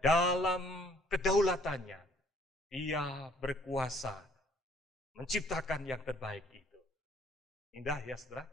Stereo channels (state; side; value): normal; both; correlation 0.61